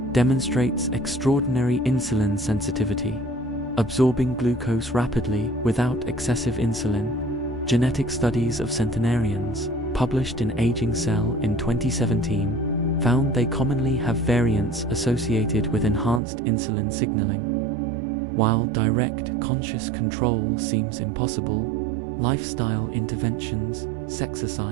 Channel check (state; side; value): drops out; left; at 16.2 s